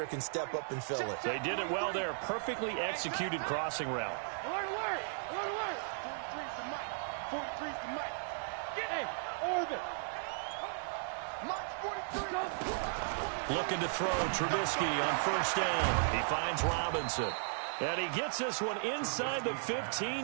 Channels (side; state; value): left; silent; 54 dB below the other